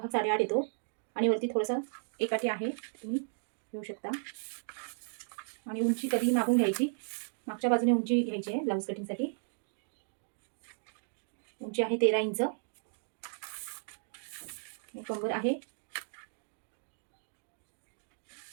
8.5 येतो आणि वरती थोडंसं एकाठी आहे, तुम्ही घेऊ शकता. आणि उंची कधी मागून घ्यायची, मागच्या बाजूने उंची घ्यायची आहे ब्लाऊज कटिंगसाठी. उंची आहे 13 इंच. कंबर आहे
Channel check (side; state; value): left; silent; digital silence